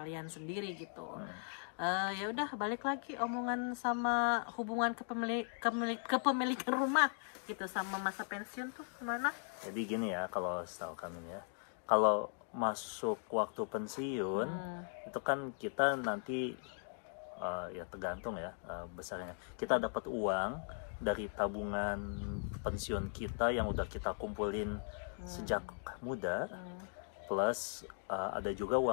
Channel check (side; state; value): right; silent; 52 dB below the other